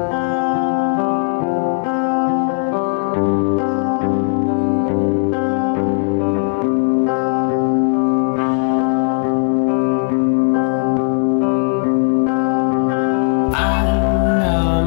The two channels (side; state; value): right; silent; 62 dB below the other